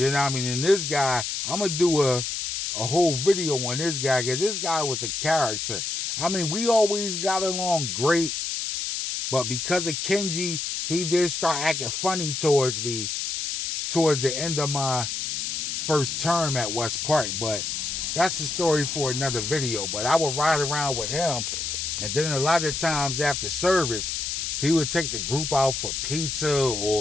know what I mean? And this guy, I'm going to do a whole video on this guy, because this guy was a character. I mean, we always got along great, but because of Kenji, he did start acting funny towards me towards the end of my first term at West Park. But that's a story for another video. But I would ride around with him, and then a lot of times after service, he would take the group out for pizza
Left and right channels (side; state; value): left; noise; hiss, 3 dB below the sound